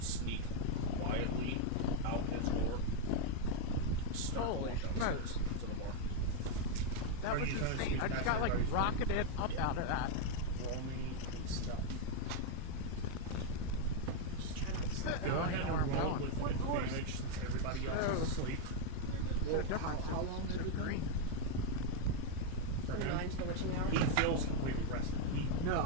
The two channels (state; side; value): different; both; correlation 0.01